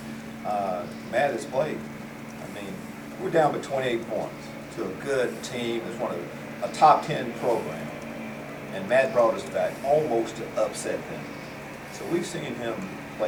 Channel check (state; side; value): identical; both; correlation 1.00